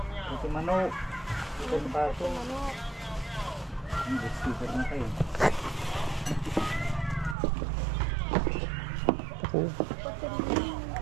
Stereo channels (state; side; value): drops out; left; at 7.4 s